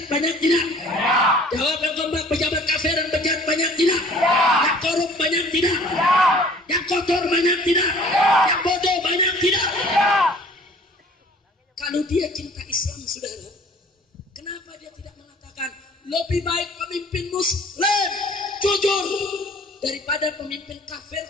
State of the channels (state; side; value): normal; both; correlation 0.51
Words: banyak tidak? Jawab yang kompak, pejabat kafir yang bejat banyak tidak? Yang korup banyak tidak? Yang kotor banyak tidak? Yang bodoh banyak tidak? Kalau dia cinta Islam, saudara, kenapa dia tidak mengatakan lebih baik pemimpin Muslim jujur daripada pemimpin kafir